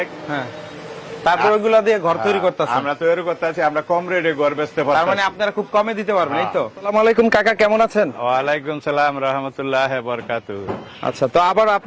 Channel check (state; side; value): identical; both; correlation 1.00